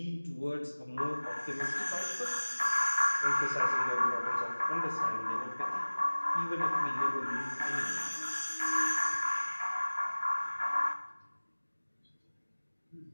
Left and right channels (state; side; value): inverted; both; correlation -1.00